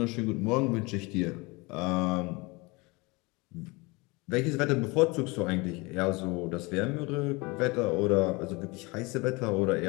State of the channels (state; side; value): quieter; right; 25.7 dB